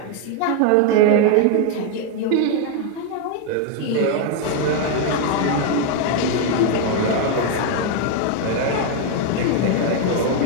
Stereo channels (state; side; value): different; both; correlation 0.01